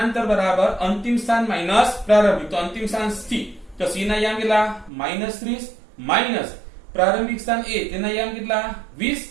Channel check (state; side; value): drops out; left; at 4.9 s